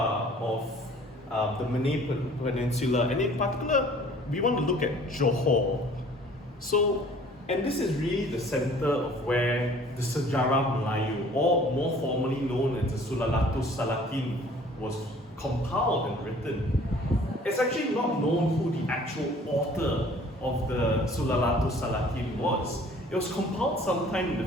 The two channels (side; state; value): both; normal; correlation 0.52